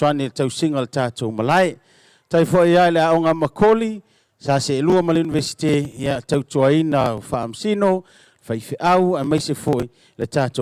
le tau singa le tātou malai, tai fo ia le aonga makoli, sa se lua ma le Universite, ia tau tuaina o whaamsino, whaife au, a maise fo le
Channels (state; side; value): identical; both; correlation 1.00